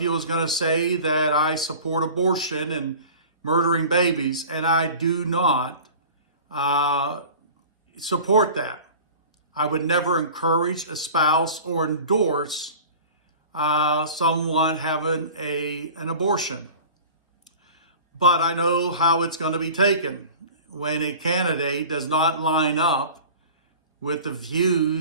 is going to say that I support abortion and murdering babies, and I do not support that. I would never encourage, espouse, or endorse someone having an abortion. But I know how it's going to be taken when a candidate does not line up with the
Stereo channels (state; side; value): inverted; both; correlation -0.40